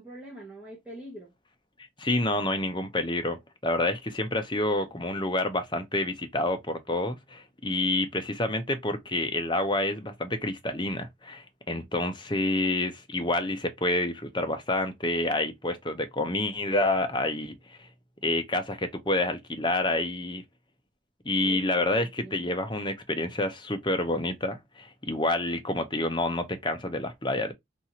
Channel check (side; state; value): both; normal; correlation 0.23